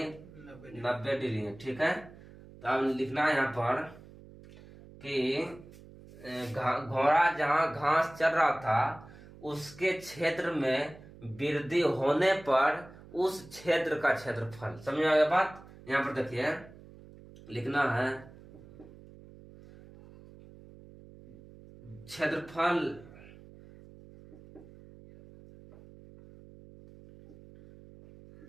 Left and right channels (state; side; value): noise; right; hum, 20 dB below the sound